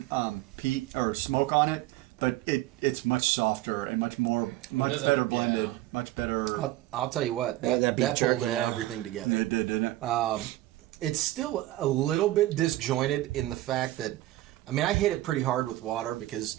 peat or smoke on it, but it's much softer and much doesn't- better blended, yeah. much better. I'll tell you what, Yeah, that beef pulled jerky, everything together. It did, didn't it? It's still a little bit disjointed in the fact that, I mean, I hit it pretty hard with water because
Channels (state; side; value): quieter; left; 16.2 dB